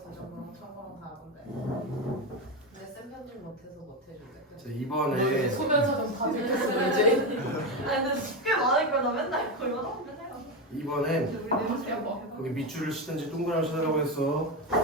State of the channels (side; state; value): both; normal; correlation 0.13